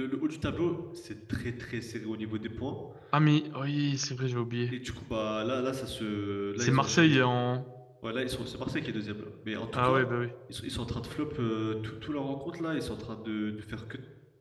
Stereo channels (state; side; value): identical; both; correlation 1.00